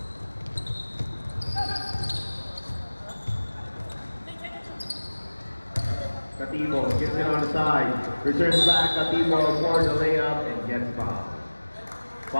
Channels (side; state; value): both; inverted; correlation -1.00